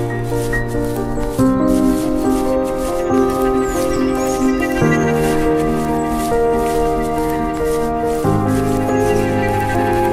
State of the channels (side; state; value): both; identical; correlation 1.00